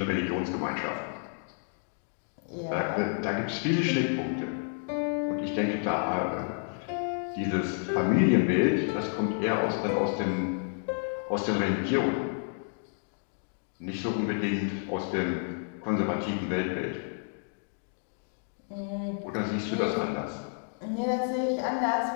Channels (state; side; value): silent; right; 58 dB below the other